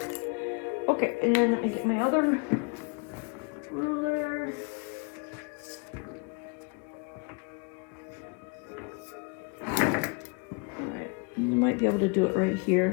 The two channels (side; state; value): right; quieter; 33.5 dB